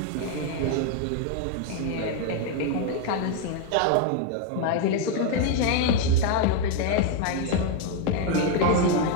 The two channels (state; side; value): different; both; correlation 0.01